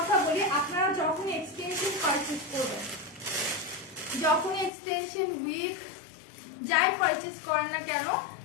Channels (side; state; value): right; drops out; at 4.7 s